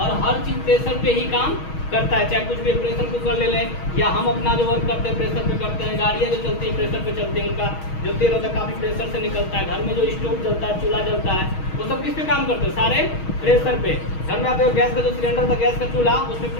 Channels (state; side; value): late; right; 6.3 ms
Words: हर चीज़ प्रेशर पे ही काम करता है। चाहे कुछ भी प्रेशर कुकर ले लें या हम अपना जो वर्क करते हैं प्रेशर पे करते हैं। गाड़ियाँ जो चलती हैं प्रेशर पे चलती हैं, उनका जो तेल होता है काफ़ी प्रेशर से निकलता है। घर में जो स्टोव जलता है, चूल्हा जलता है, वो सब किस पे काम करते हैं, सारे प्रेशर पे। घर में आते हो गैस का जो सिलेंडर था, गैस का चूल्हा, उसमें